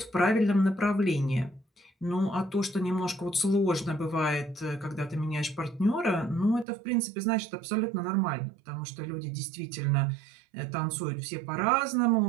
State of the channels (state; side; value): drops out; left; at 6.7 s